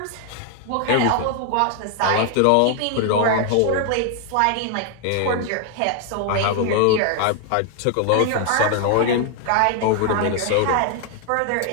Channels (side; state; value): both; different; correlation 0.00